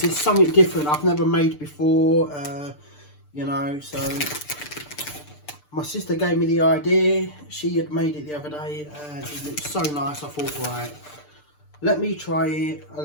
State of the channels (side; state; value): right; late; 6.7 ms